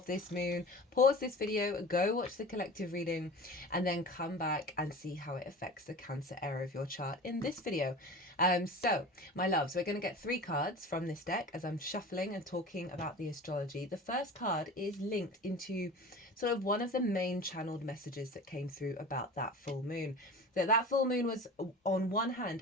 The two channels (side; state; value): both; normal; correlation 0.36